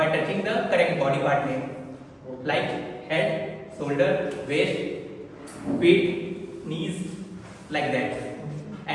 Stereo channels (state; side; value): identical; both; correlation 1.00